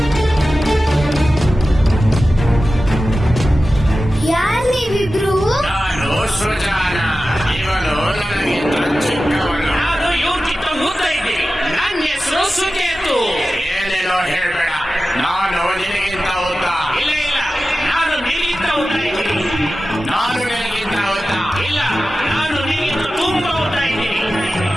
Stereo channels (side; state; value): both; normal; correlation 0.94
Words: ಹೇಳ್ಬೇಡ, ನಾನು ನಿನಗಿಂತ ಉದ್ದ. ಇಲ್ಲ ಇಲ್ಲ, ನಾನು ನಿನಗಿಂತ ಉದ್ದ ಇದ್ದೀನಿ. ನಾನು ನಿನಗಿಂತ ಉದ್ದ. ಇಲ್ಲ, ನಾನು ನಿನಗಿಂತ ತುಂಬಾ ಉದ್ದ ಇದ್ದೀನಿ.